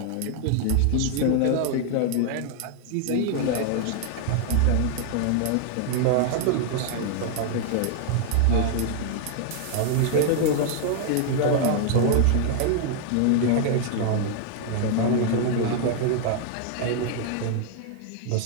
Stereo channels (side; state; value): both; different; correlation 0.00